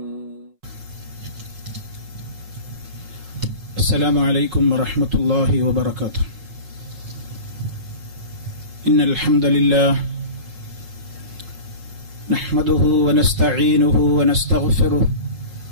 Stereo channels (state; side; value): late; left; 5.5 ms